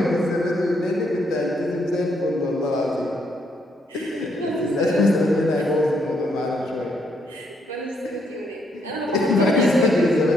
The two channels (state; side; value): normal; both; correlation 0.74